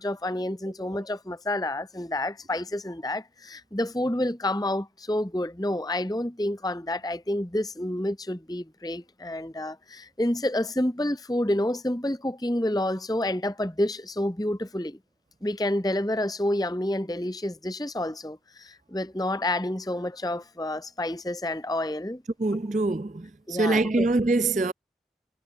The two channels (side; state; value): both; normal; correlation 0.76